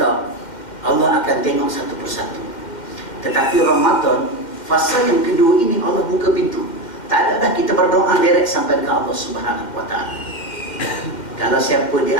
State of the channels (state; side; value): late; right; 2.1 ms